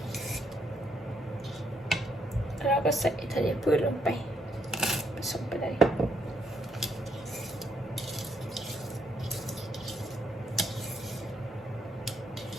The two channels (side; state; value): both; normal; correlation 0.74